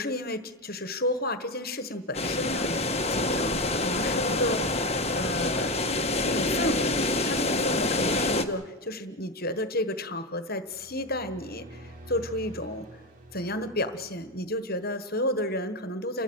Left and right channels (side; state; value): both; normal; correlation 0.15